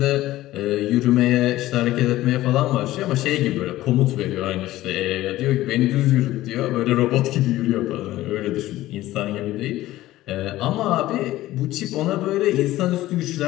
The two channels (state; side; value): quieter; right; 15.9 dB